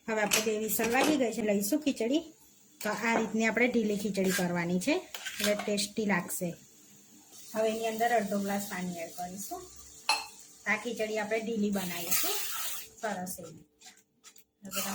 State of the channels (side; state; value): both; identical; correlation 1.00